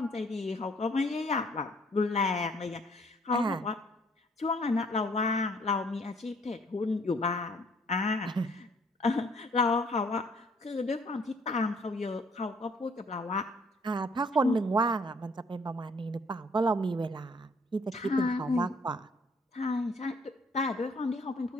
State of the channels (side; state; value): both; normal; correlation 0.62